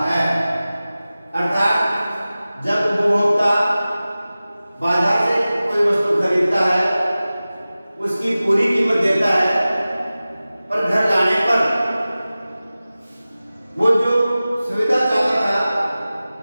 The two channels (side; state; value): both; inverted; correlation -0.96